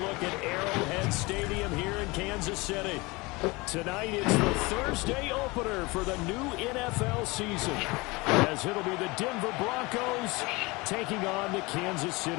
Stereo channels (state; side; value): quieter; right; 24.3 dB